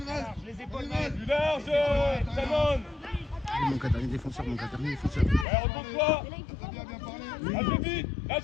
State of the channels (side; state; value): right; drops out; at 5.5 s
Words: Plus large, Shannon. Mon dernier défenseur, Ouais, retourne-toi. Très bien, bien parlé. Lâchez vite,